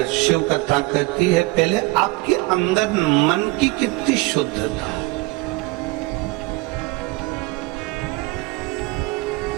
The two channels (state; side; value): quieter; left; 22.7 dB